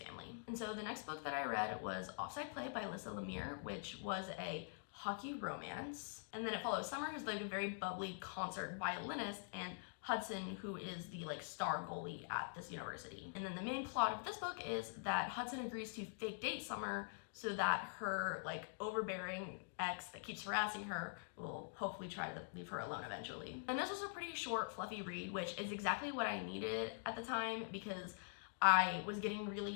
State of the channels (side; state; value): right; silent; digital silence